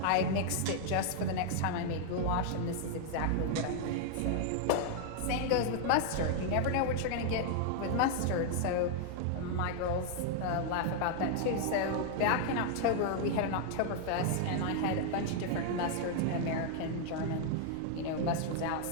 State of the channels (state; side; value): different; both; correlation 0.00